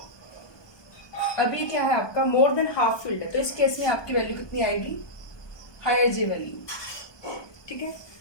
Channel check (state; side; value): late; right; 1.2 ms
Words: अभी क्या है आपका मोर देन हाफ फील्ड है, तो इस केस में आपकी वैल्यू कितनी आएगी हायर J वैल्यू। ठीक है,